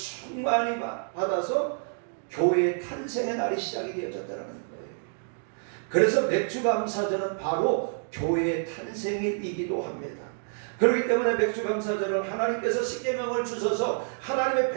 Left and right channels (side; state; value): left; silent; 59 dB below the other